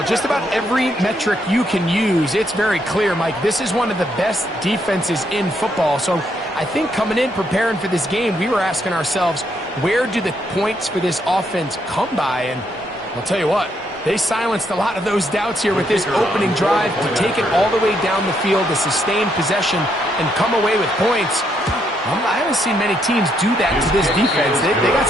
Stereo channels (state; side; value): normal; both; correlation 0.75